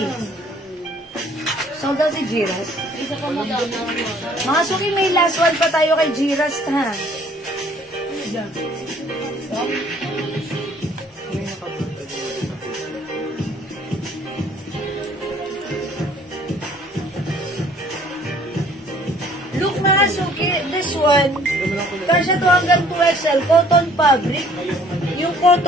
Sold out si Giras. Isa pa maganda. Mga suki, may last one pa tayo kay Giras, ha? Look, mga suki, this one, kasya to hanggang 2XL, cotton fabric. Yung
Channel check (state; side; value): normal; both; correlation 0.57